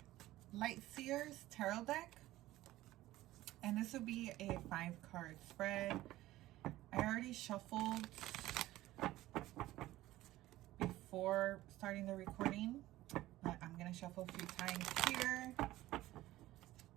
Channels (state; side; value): quieter; left; 16.2 dB